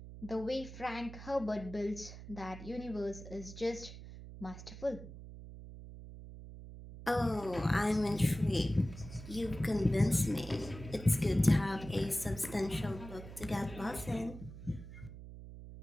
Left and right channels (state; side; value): noise; right; hum, 13 dB below the sound